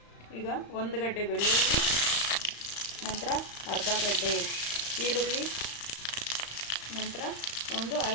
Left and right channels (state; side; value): late; right; 35 ms